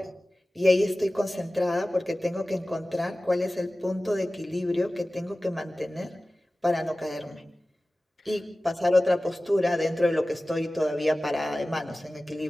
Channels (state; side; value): normal; both; correlation 0.97